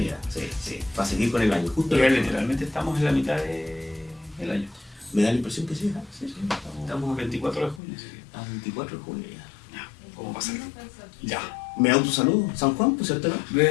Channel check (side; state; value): right; drops out; at 7.8 s